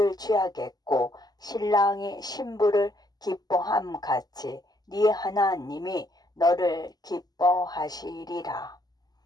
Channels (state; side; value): late; right; 0.19 ms